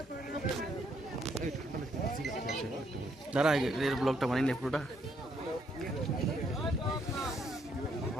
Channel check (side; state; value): both; normal; correlation 0.72